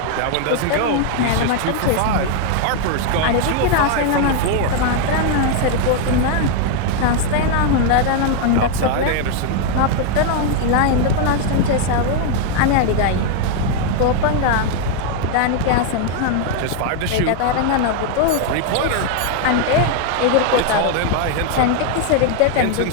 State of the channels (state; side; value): different; both; correlation 0.00